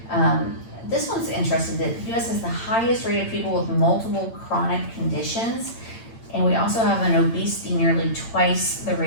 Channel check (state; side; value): late; right; 8.8 ms